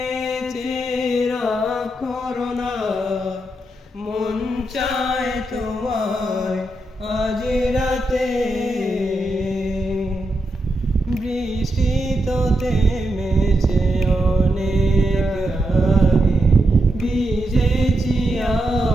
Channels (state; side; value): normal; both; correlation 0.85